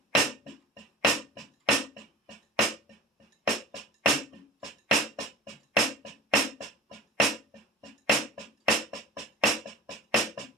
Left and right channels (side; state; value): both; normal; correlation 0.35